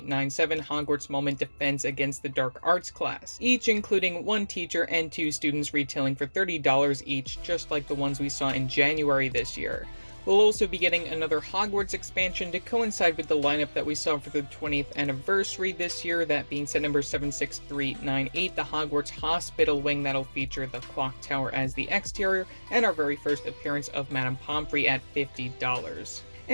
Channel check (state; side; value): inverted; both; correlation -1.00